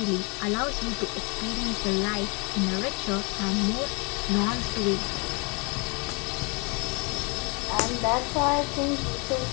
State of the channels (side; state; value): right; quieter; 31.7 dB